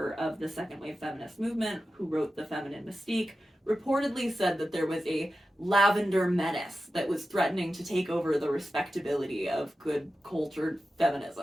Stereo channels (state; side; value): normal; both; correlation 0.92